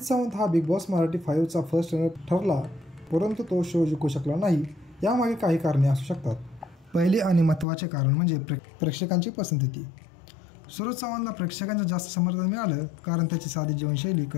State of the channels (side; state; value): right; drops out; at 7.7 s